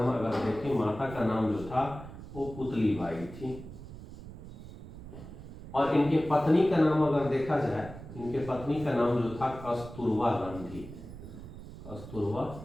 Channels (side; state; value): right; noise; rumble, 13 dB below the sound